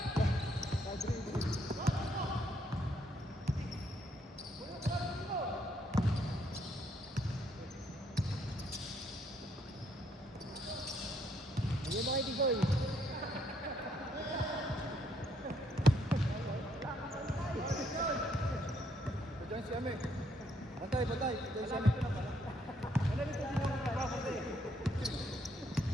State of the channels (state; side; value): normal; both; correlation 0.71